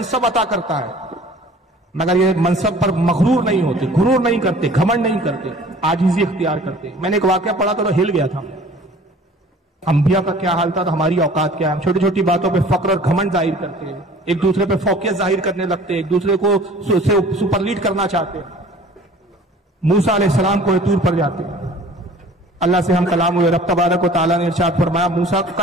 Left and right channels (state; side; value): normal; both; correlation 0.48